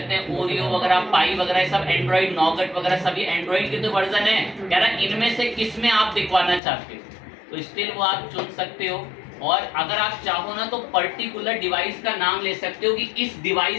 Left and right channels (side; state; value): right; drops out; at 6.6 s